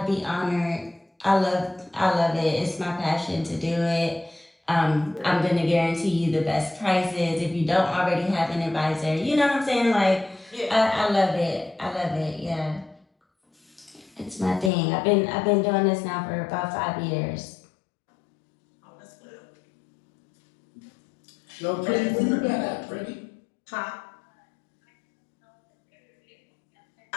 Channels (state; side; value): drops out; right; at 14.7 s